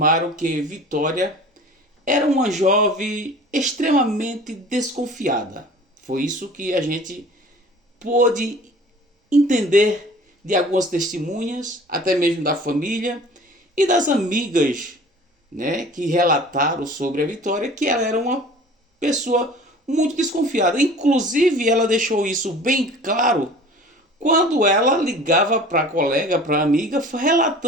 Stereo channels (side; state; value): both; normal; correlation 0.44